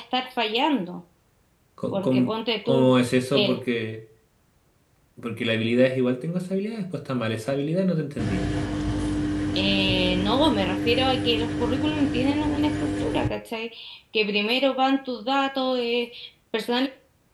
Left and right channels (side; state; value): both; identical; correlation 1.00